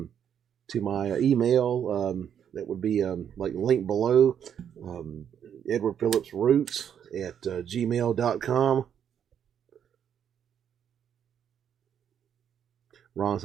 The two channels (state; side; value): quieter; left; 8.7 dB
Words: my email. That would be like linked below. Edward Phillips Roots at gmail.com. Ron